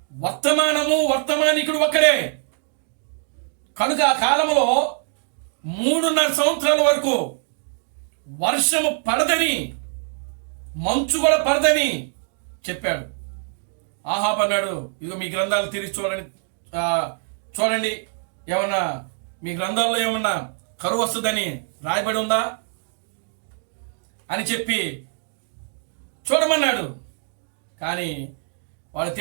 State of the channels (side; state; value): left; silent; 55 dB below the other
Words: వర్తమానము, వర్తమానికుడు ఒక్కడే. కనుక ఆ కాలంలో 3.5 సంవత్సరాల వరకు వర్షము పడదని, మంచు కూడా పడదని చెప్పాడు. ఆహాబు అన్నాడు, ఇదిగో మీ గ్రంథాలు తిరిగి చూడండి, ఏమన్నా మీ గ్రంథాల్లో ఏమన్నా కరువు వస్తుందని రాయబడి ఉందా అని చెప్పి చూడమన్నాడు. కానీ వాళ్ళు